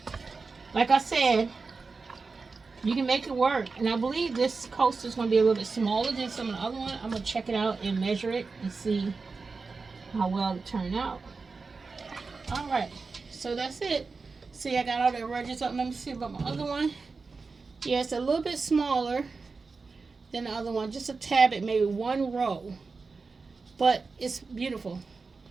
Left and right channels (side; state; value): left; quieter; 4.3 dB